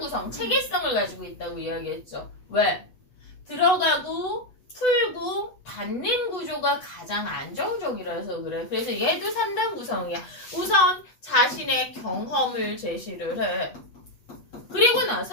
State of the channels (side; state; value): right; late; 8.1 ms